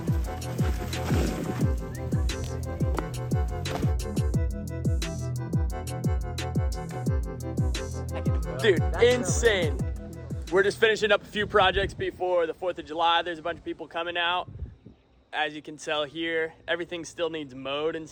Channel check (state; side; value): identical; both; correlation 1.00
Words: Dude, insane. We're just finishing up a few projects before the 4th of July. There's a bunch of people coming out. As you can tell here, everything still needs mowed and